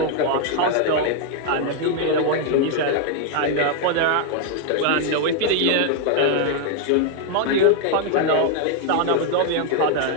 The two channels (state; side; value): different; both; correlation 0.00